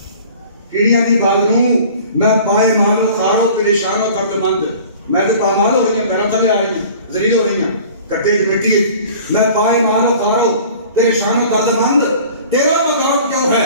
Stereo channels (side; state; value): both; inverted; correlation -0.46